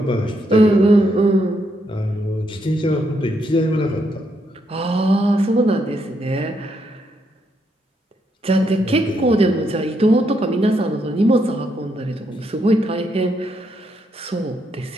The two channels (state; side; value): normal; both; correlation 0.77